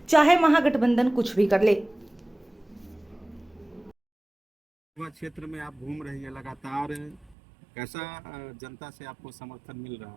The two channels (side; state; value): left; drops out; at 7.4 s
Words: चाहे महागठबंधन कुछ भी कर ले। क्षेत्र में आप घूम रही है लगातार, कैसा जनता से आपको समर्थन मिल रहा